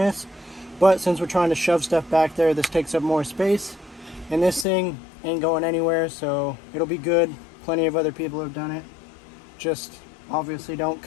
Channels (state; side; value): drops out; right; at 4.7 s